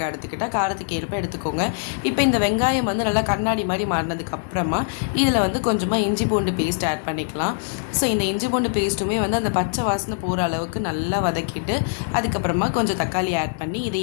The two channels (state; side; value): silent; right; digital silence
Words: எடுத்துக்கிட்டால் காரத்துக்கு ஏற்ப எடுத்துக்கோங்க. இப்போ இந்த வெங்காயம் வந்து நல்லா கண்ணாடி மாதிரி மாறினதுக்கப்புறமா இதில் வந்து கொஞ்சமாக இஞ்சி பூண்டு பேஸ்ட் ஆட் பண்ணிக்கலாம். ஸோ இந்த இஞ்சி பூண்டு பேஸ்ட்டுமே வந்து அந்த பச்சை வாசனை போகிற அளவுக்கு நல்லா வதக்கிட்டு அதுக்கப்புறமா கொஞ்சம் தக்காளி ஆட் பண்ணி